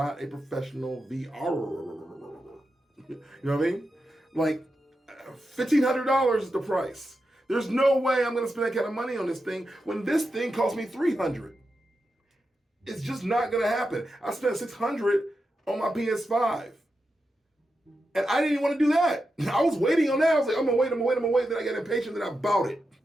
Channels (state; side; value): normal; both; correlation 0.88